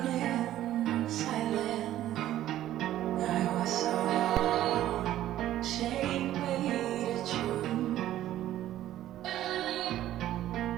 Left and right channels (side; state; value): left; quieter; 13.1 dB